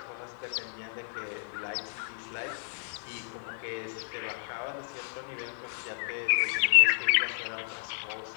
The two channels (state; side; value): silent; right; digital silence